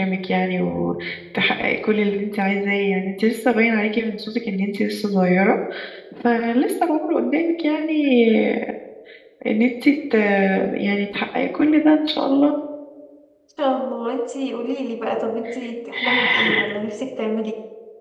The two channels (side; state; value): both; identical; correlation 1.00